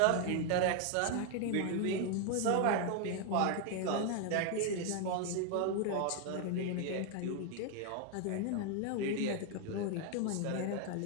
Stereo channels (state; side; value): different; both; correlation 0.00